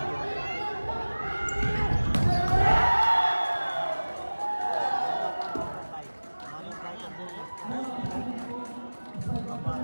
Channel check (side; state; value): both; inverted; correlation -1.00